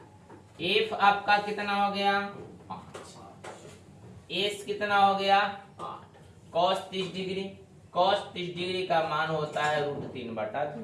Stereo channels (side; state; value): both; identical; correlation 1.00